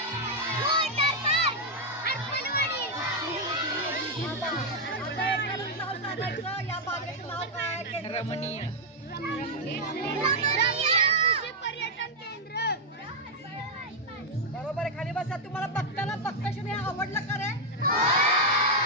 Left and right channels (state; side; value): normal; both; correlation -0.01